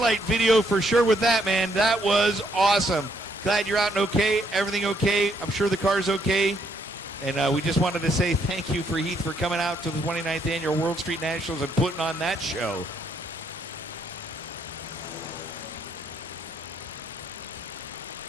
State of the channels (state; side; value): normal; both; correlation 0.71